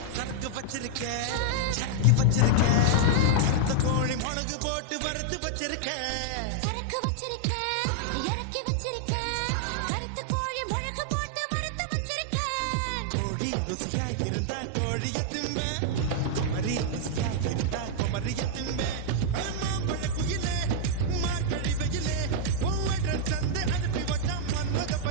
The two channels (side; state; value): both; different; correlation -0.01